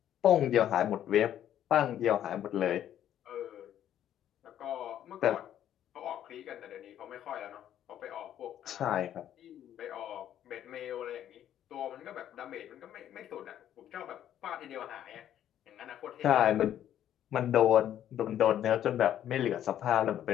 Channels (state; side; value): quieter; right; 11.0 dB